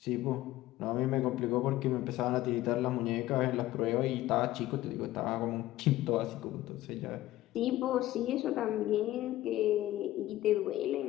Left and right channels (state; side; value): quieter; right; 15.6 dB